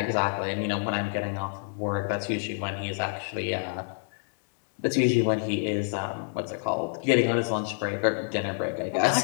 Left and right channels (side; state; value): right; silent; digital silence